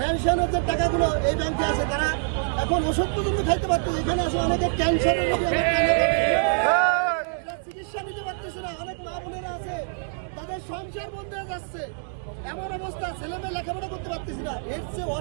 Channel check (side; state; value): left; silent; digital silence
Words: যে টাকাগুলো এই ব্যাংকে আছে, তারা এখন ওষুধ পর্যন্ত খাইতে পারতেছে। এখানে আছে অনেকে ক্যান্সারের চিকিৎসা নিতে পারতেছে না। অনেক মা বোনেরা আছে তাদের সংসার বন্ধ হয়ে যাচ্ছে, এমন অবস্থা, ছেলে মেয়ে লেখাপড়া করতে পারতেছে না। এর চেয়ে